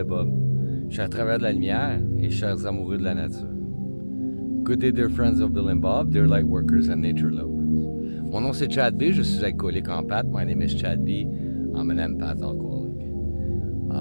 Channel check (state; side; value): inverted; both; correlation -1.00